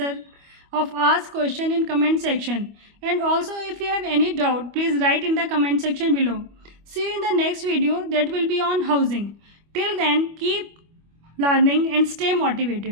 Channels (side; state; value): left; late; 25 ms